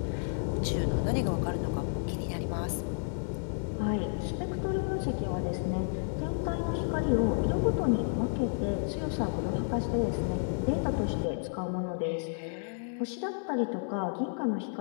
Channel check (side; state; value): right; silent; 56 dB below the other